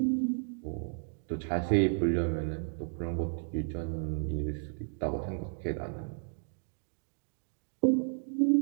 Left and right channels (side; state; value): left; silent; digital silence